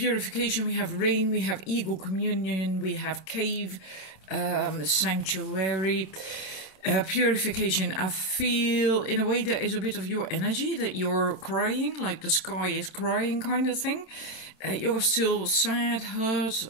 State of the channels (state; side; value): late; right; 27 ms